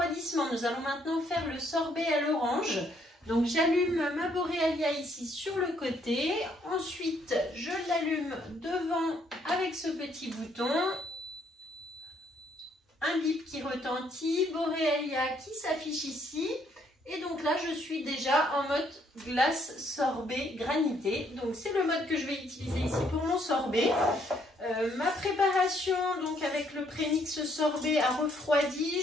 nous allons maintenant faire le sorbet à l'orange. Donc j'allume ma Borealia ici sur le côté. Ensuite, je l'allume devant avec ce petit bouton. Un bip qui retentit, Borealia qui s'affiche ici. Et donc là, je suis déjà en mode glace sorbet granité. Donc c'est le mode que je vais utiliser ici pour mon sorbet. Ma préparation donc avec le prémix sorbet a refroidi.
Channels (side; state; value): both; normal; correlation 0.68